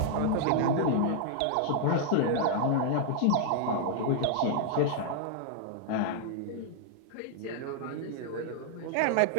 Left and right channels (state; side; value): different; both; correlation 0.00